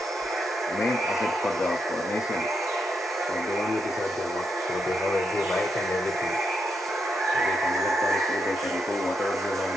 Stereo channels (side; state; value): both; normal; correlation 0.81